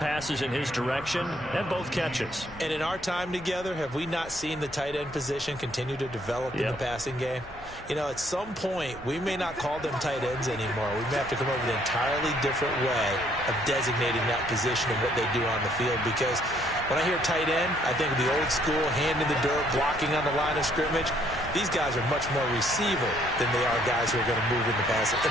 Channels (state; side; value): normal; both; correlation 0.66